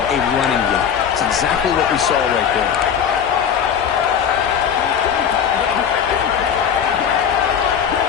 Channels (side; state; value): right; quieter; 8.0 dB